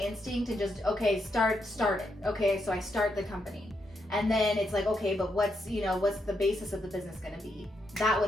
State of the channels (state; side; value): normal; both; correlation 0.81